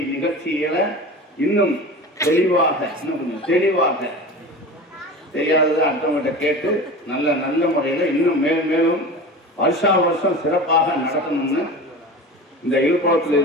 நிகழ்ச்சிகளை இன்னும் தெளிவாக தெரியாதது அடுத்தவங்கிட்ட கேட்டு நல்ல முறையில் இன்னும் மேலும் வருஷம் சிறப்பாக நடத்தணும்னு இந்த இழுப்பத்தில்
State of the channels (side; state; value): both; normal; correlation 0.32